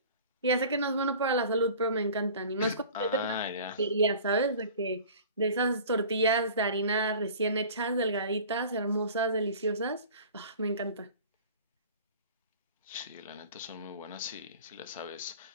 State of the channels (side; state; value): both; inverted; correlation -0.43